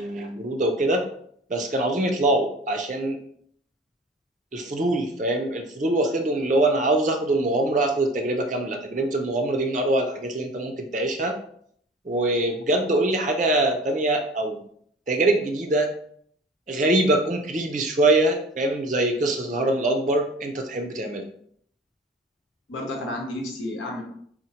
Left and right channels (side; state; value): both; normal; correlation 0.41